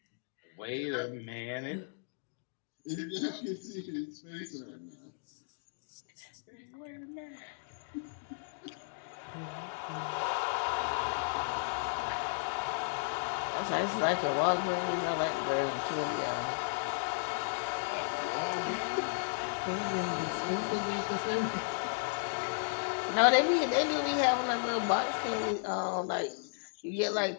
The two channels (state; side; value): silent; right; digital silence